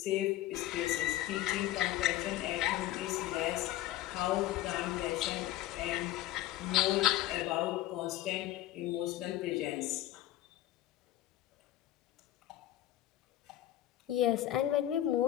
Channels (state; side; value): quieter; right; 14.5 dB